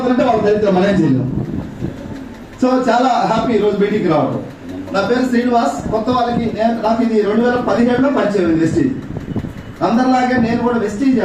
వాళ్ళు దరిద్రం మనం ఏం చేయలేం. సో చాలా హ్యాపీ ఈరోజు మీటింగ్కి రావడం. నా పేరు శ్రీనివాస్. కొత్త వాళ్ళకి నాకు ఇది 2017లో పరిచయం వెస్టీజ్. అందరిలాగే నేను కూడా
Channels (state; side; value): identical; both; correlation 1.00